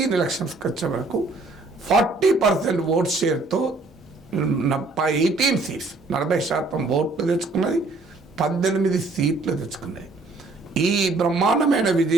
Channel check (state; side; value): quieter; left; 3.4 dB